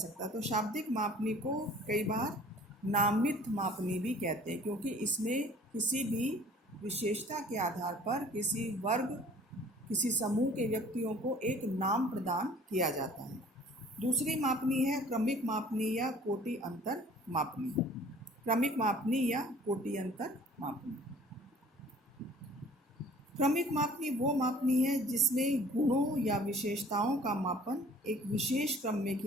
तो शाब्दिक मापनी को कई बार नामित मापनी भी कहते हैं, क्योंकि इसमें किसी भी विशेषता के आधार पर किसी वर्ग, किसी समूह के व्यक्तियों को एक नाम प्रदान किया जाता है। दूसरी मापनी है क्रमिक मापनी या कोटि अंतर मापनी। क्रमिक मापनी या कोटि अंतर मापनी। क्रमिक मापनी वो मापनी है जिसमें गुणों या विशेषताओं का मापन एक विशेष क्रम में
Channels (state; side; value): normal; both; correlation 0.50